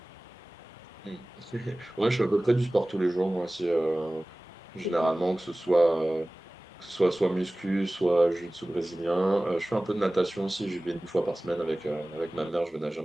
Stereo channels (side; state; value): both; normal; correlation 0.98